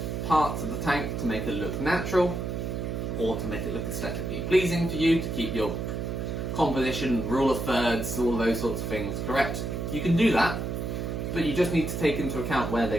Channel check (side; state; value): right; noise; hum, 3 dB below the sound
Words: parts of the tank to make it look natural, or to make it look aesthetically pleasing for you, to keep your composition, rule of thirds, all those sorts of things correct. You can do that, but you just need to take into account where